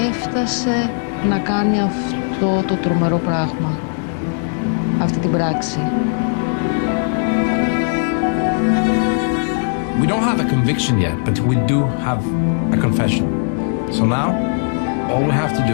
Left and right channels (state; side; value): silent; right; 67 dB below the other